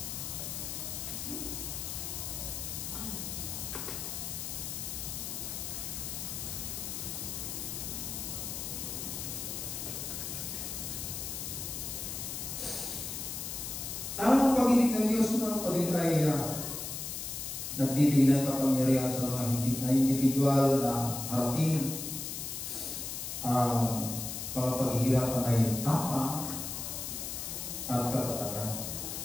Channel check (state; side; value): noise; left; hiss, 5 dB below the sound